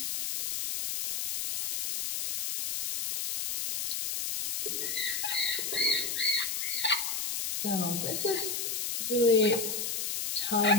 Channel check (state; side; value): noise; left; hiss, 2 dB below the sound